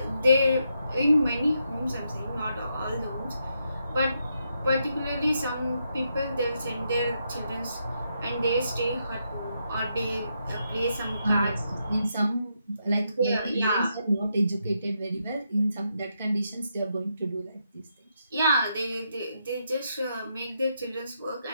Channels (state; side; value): inverted; both; correlation -0.81